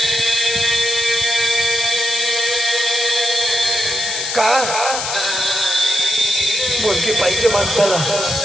का मुलगी पाहिजे माणसाला?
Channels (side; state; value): left; noise; hiss, 3 dB below the sound